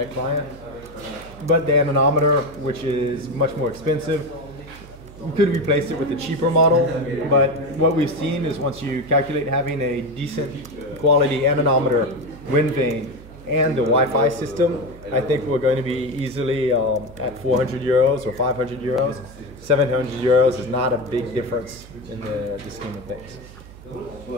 client. But the anemometer, which is much more expensive, we could replace it with a cheaper model, but what we've seen is once you calculate having a decent quality anemometer, wind vane, and the Wi-Fi system, I think we're going to be easily at 400 euros or 500 euros. 700 euros is not a big difference in the scheme of things.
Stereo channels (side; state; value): right; noise; hum, 18 dB below the sound